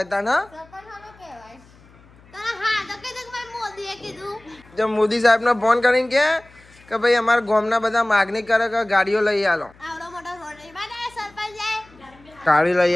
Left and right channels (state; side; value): noise; left; hum, 26 dB below the sound